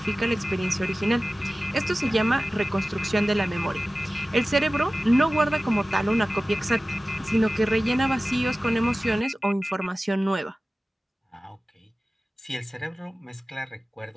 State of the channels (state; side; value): normal; both; correlation 0.96